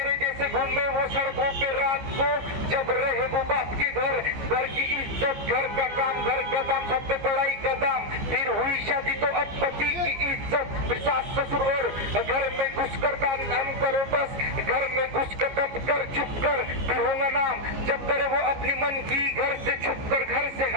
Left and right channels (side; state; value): left; late; 15 ms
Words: जैसे घूमे वो सड़कों पे रात को, जब रहे वो बाप के घर, घर की इज्जत घर का काम, घर का दाम सबसे पढ़ाई का दाम, फिर हुई शादी तो अब पति की इज्जत, फिर सास ससुर और घर में घुसकर काम करो, बस घर में घुसकर दब कर चुप कर, फिर होगा नाम जब करे वो अपनी मन की, घर से छुप कर घर से